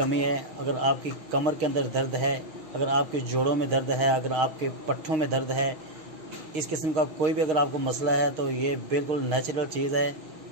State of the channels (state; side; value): late; left; 6.4 ms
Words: है, अगर आपकी कमर के अंदर दर्द है, अगर आपके जोड़ों में दर्द है, अगर आपके पट्ठों में दर्द है, इस किस्म का कोई भी अगर आपको मसला है तो ये बिल्कुल नेचुरल चीज़ है